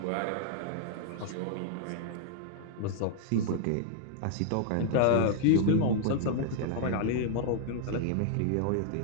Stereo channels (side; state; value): both; different; correlation -0.01